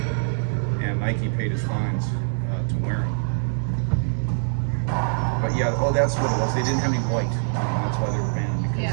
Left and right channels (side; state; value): left; silent; digital silence